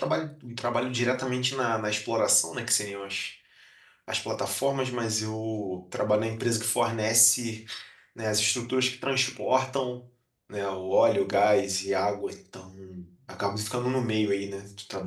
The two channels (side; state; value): both; identical; correlation 1.00